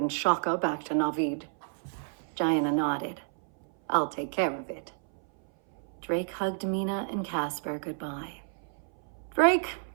Shaka back to Navid? Jaina nodded. I'll take care of it. Drake hugged Mina and Casper goodbye. Drake,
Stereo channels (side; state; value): left; silent; 58 dB below the other